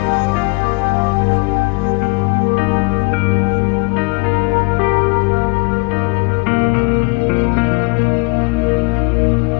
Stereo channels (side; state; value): right; quieter; 28.8 dB